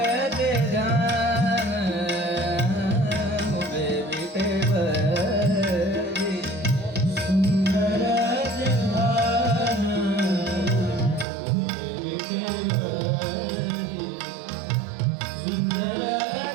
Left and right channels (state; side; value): drops out; left; at 11.2 s